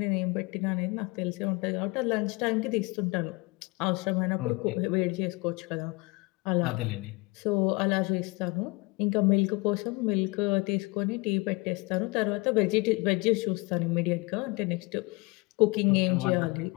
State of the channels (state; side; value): quieter; right; 26.3 dB